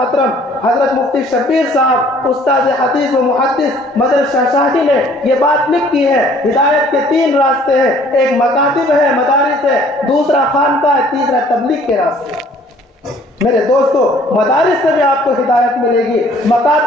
حضرت مفتی شبیر صاحب، استاد حدیث و محدث مدر شاہ شاہی نے یہ بات لکھی ہے، ہدایت کے 3 راستے ہیں، ایک مکاتب ہے، مدارس ہے، دوسرا خانقاہ ہے، تیسرا تبلیغ کے راستے۔ میرے دوستو، مدارس سے بھی آپ کو ہدایت ملے گی،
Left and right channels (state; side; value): normal; both; correlation 0.57